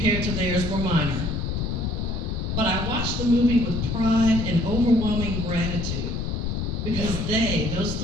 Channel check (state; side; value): noise; left; rumble, 2 dB below the sound